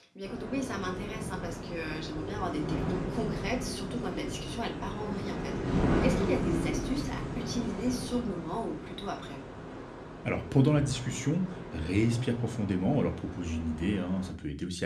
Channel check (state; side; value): identical; both; correlation 1.00